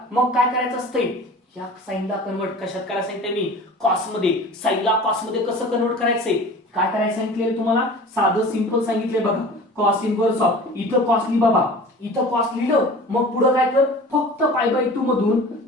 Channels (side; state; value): both; normal; correlation 0.41